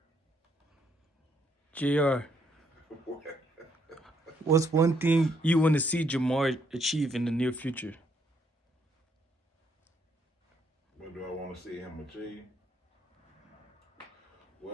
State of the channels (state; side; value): normal; both; correlation 0.72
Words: JR, what's one thing you want to see Jamar achieve in the near future? What do I want to see him achieve?